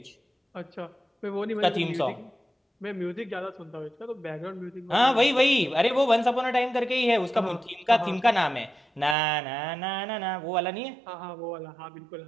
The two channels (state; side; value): drops out; left; at 9.2 s